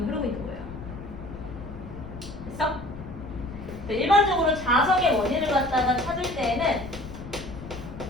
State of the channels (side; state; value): left; noise; rumble, 13 dB below the sound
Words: 흐르고 있는 거예요. 됐어? 일반적으로 자석의 원인을 갖다가 찾을 때에는